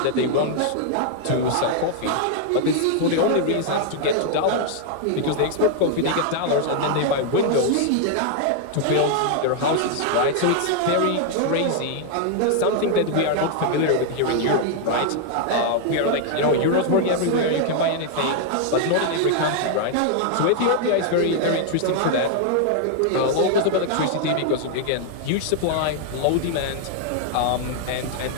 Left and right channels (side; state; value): both; different; correlation 0.00